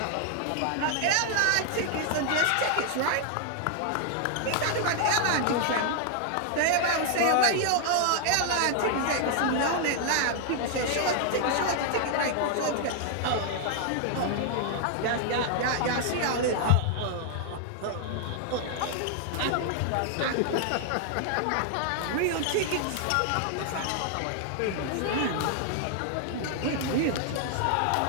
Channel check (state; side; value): different; both; correlation 0.00